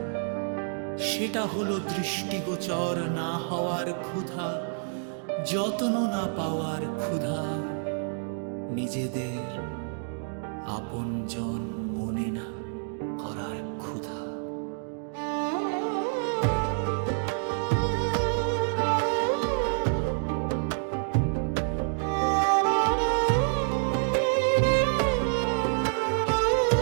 সেটা হলো দৃষ্টিগোচর না হওয়ার ক্ষুধা, যত্ন না পাওয়ার ক্ষুধা, নিজেদের আপনজন মনে না করার ক্ষুধা।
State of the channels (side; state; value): left; silent; digital silence